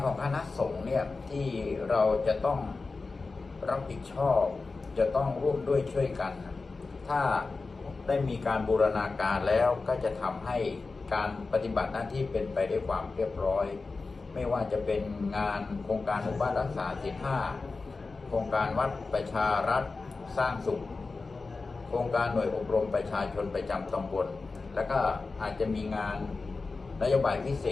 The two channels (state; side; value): quieter; right; 4.0 dB